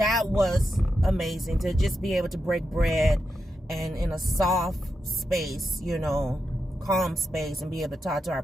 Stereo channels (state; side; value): normal; both; correlation 0.87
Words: was amazing to just be able to break bread and in a soft space, you know, calm space, and be able to talk to our